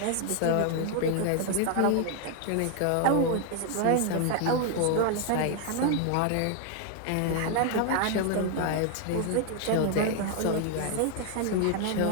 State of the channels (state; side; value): different; both; correlation 0.00